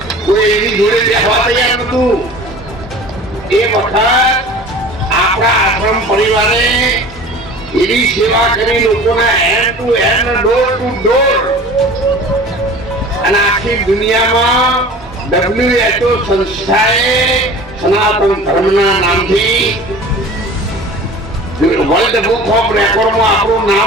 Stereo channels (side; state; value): both; normal; correlation 0.41